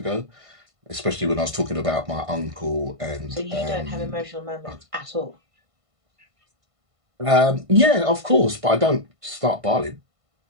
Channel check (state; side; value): late; left; 1.5 ms